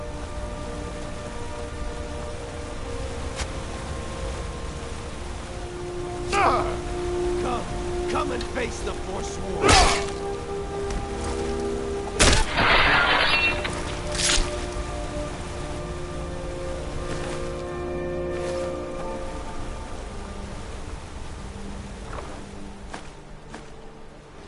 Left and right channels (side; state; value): both; identical; correlation 1.00